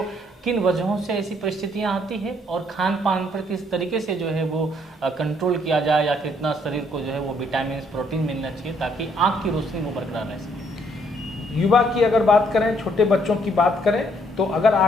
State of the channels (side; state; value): both; normal; correlation 0.68